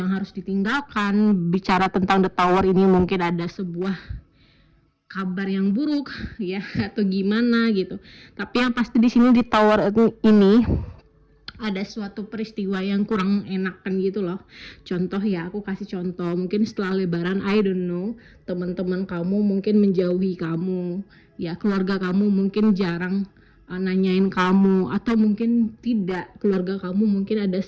harus ditinggalkan. Bicara tentang The Tower ini mungkin ada sebuah kabar yang buruk ya atau gimana gitu. Tapi yang pasti di sini di Tower ini ada suatu peristiwa yang kurang enakan gitu loh. Contoh ya, aku kasih contoh. Mungkin setelah lebaran, I don't know, teman-teman kamu mungkin menjauhi kamu. Ya, keluarga kamu mungkin jarang nanyain kamu, atau mungkin tidak, keluarga kamu mungkin ada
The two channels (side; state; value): both; identical; correlation 1.00